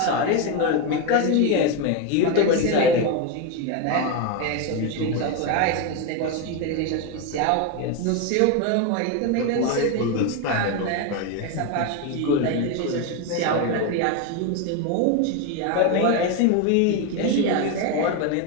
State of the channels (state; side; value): different; both; correlation 0.02